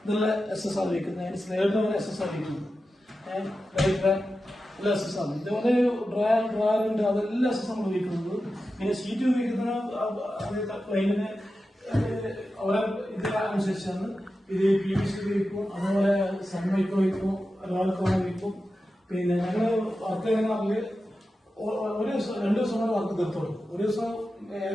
ഇതെല്ലാം SS ആണ് വയ്ക്കുന്നത്. സ്ലൈഡർ SS ആണ് വയ്ക്കുന്നത്. എല്ലാം SS ആണ്. ഇതുപോലെ ഡ്രയറുണ്ട്, അതെല്ലാം SS നമ്മൾ ഉപയോഗിക്കുന്നത്. പിന്നെ ഷീറ്റ് ഉപയോഗിക്കുന്ന പ്ലെയിനിന് അവരെ ഇതിനനുസരിച്ചാണ്. ഇത് PVC ഉപയോഗിക്കും, അതുപോലെ സൺമൈക്ക് വയ്ക്കും, ഒരാൾക്ക് വയ്ക്കും. പിന്നെ ഞങ്ങൾ വർക്ക് ചെയ്യുന്ന ഒരു ദിവസം 2 ദിവസം കൊണ്ട് വർക്ക് തീർത്തോളൂ. ഒരു ദിവസം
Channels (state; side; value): normal; both; correlation 0.92